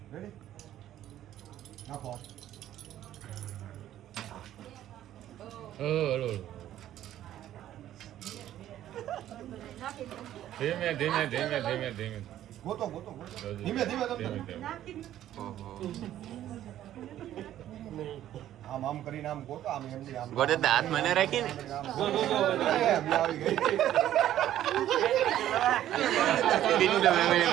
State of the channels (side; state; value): left; quieter; 12.3 dB